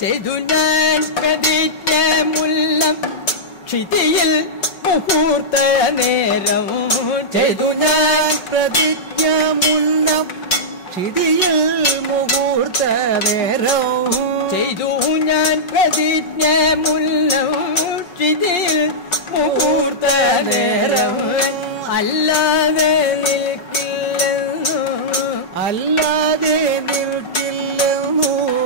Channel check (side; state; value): right; late; 5.3 ms